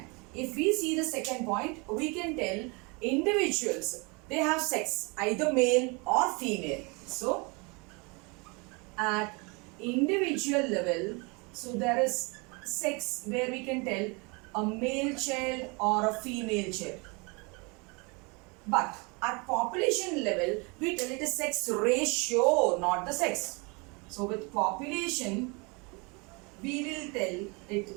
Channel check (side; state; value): left; quieter; 29.8 dB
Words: if we see the second point, we can tell individuals, they have sex, either male or female. So at individual level, so there is sex where we can tell a male child or a female child. But at population level, we tell it is sex ratio, not the sex. So with population, we will tell it